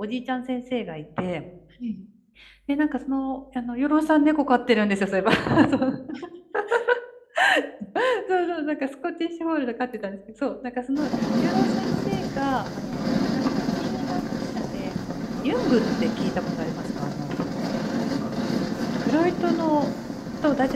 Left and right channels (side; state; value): both; identical; correlation 1.00